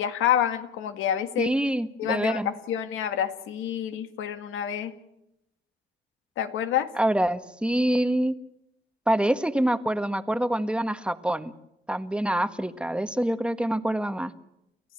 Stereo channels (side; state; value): both; normal; correlation 0.66